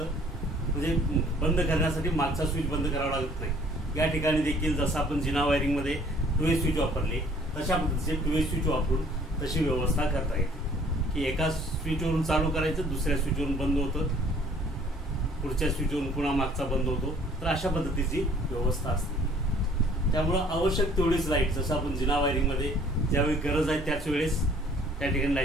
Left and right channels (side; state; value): both; normal; correlation 0.57